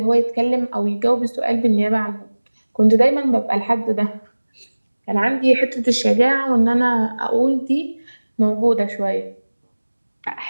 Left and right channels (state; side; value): inverted; both; correlation -1.00